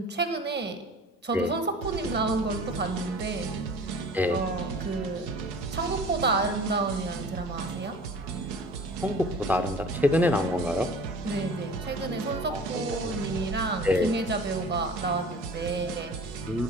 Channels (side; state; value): both; normal; correlation 0.43